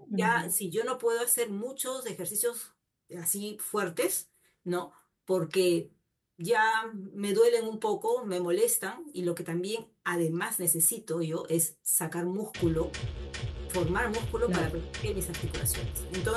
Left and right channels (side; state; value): both; identical; correlation 1.00